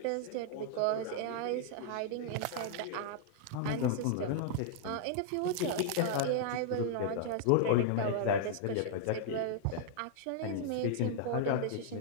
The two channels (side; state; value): both; different; correlation -0.01